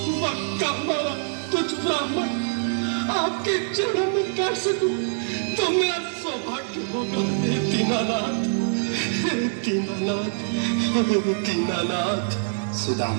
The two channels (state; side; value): silent; left; 62 dB below the other